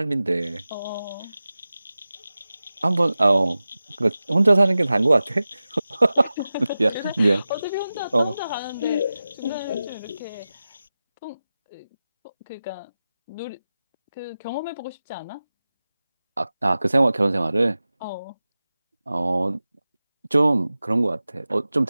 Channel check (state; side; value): inverted; both; correlation -0.95